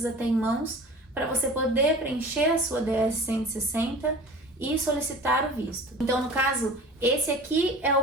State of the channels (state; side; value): normal; both; correlation 0.41